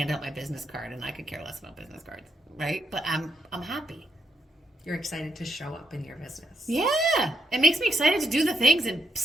out my business card, and I could care less about business cards, right? But I'm happy. You're excited to show up in your business. Yeah. It makes me excited to do the things and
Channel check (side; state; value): both; normal; correlation 0.80